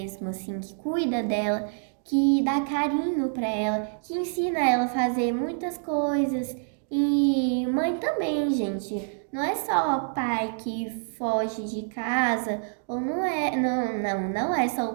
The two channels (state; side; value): silent; left; digital silence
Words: assim, que cuida dela, que dá carinho pra ela, que ensina ela a fazer muitas coisas. E mãe também, gente. Não é só o pai que foge de casa, ou não é, não é só